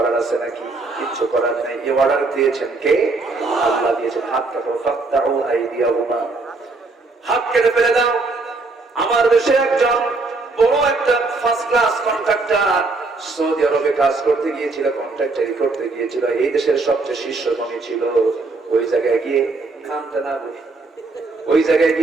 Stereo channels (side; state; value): left; quieter; 3.6 dB